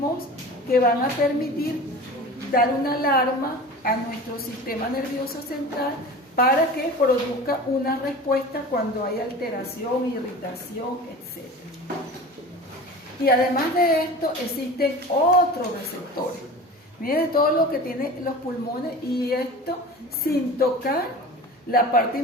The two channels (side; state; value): both; normal; correlation 0.36